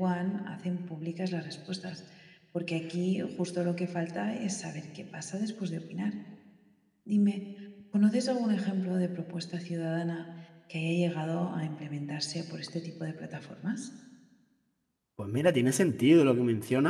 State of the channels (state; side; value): identical; both; correlation 1.00